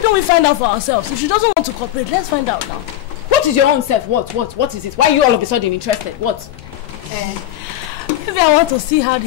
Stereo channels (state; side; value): quieter; right; 13.1 dB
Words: don't we find out for ourselves? If she doesn't want to cooperate, let's find out now. What is your own self? What is it? Why are you all of a sudden interested? What? Maybe I want to see how